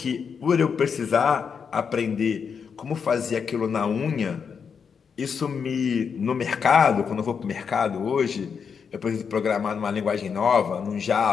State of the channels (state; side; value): quieter; right; 6.4 dB